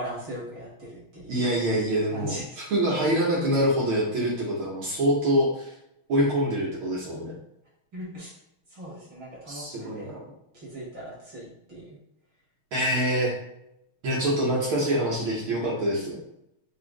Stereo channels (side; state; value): left; late; 6.4 ms